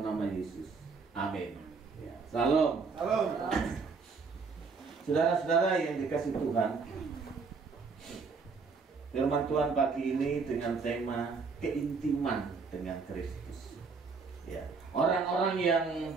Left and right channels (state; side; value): quieter; left; 4.8 dB